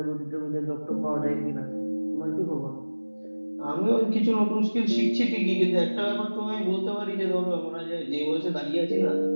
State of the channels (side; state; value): both; inverted; correlation -1.00